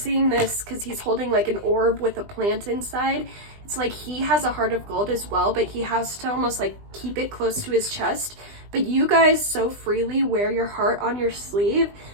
this because he's holding like an orb with a plant inside. It's like he has a heart of gold as well, but he has to almost like keep it close to his chest. But you guys so freely wear your heart on your sleeve.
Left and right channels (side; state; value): left; late; 20 ms